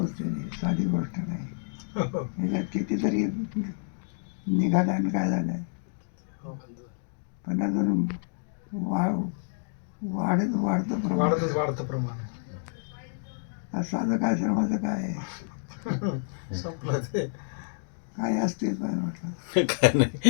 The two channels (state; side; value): silent; right; digital silence